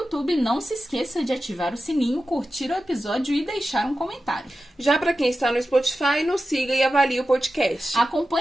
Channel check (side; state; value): both; normal; correlation 0.93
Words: não se esqueça de ativar o sininho, curtir o episódio e deixar um comentário. Já pra quem está no Spotify, nos siga e avalie o podcast.